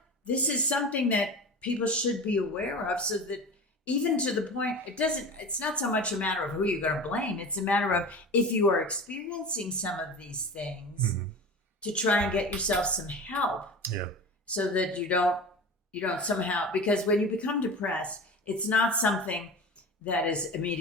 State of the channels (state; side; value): normal; both; correlation 0.32